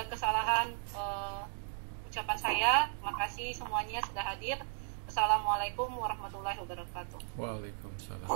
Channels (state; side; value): silent; left; digital silence